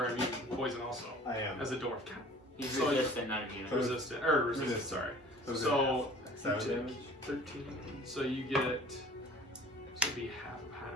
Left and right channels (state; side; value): normal; both; correlation 0.48